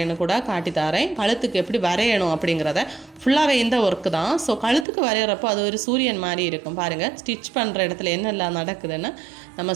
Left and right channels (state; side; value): drops out; left; at 4.9 s